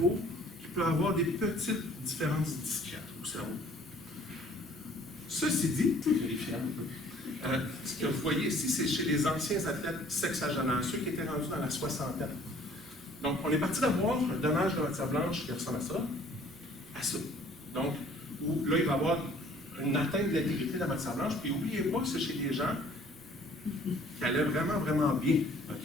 qui peuvent avoir des petites différences discrètes au cerveau. Ceci dit, ce que vous voyez ici, c'est chez les anciens athlètes sexagénaires, ceux qui étaient rendus dans la soixantaine. Donc, on est parti d'avoir un dommage de matière blanche qui ressemble à ça. Donc, où là, il va y avoir une atteinte de l'intégrité de la matière blanche, puis n'oubliez pas que c'est chez des gens qui allaient vraiment, vraiment bien.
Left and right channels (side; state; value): both; normal; correlation 0.55